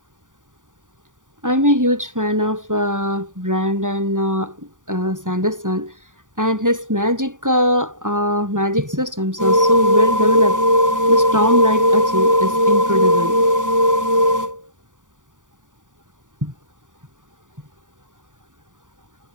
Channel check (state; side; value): late; left; 0.88 ms